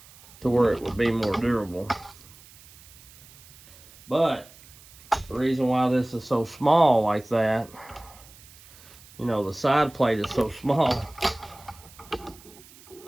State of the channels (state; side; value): noise; right; hiss, 23 dB below the sound